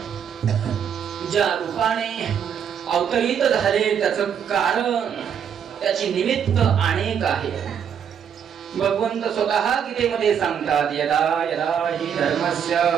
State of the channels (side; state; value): left; quieter; 8.0 dB